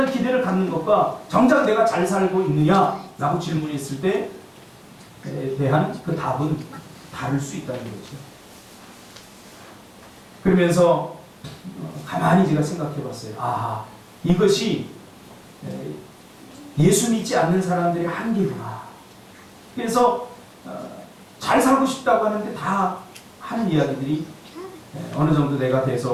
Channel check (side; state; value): both; identical; correlation 1.00